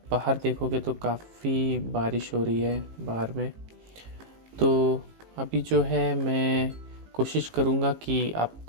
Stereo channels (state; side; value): late; left; 18 ms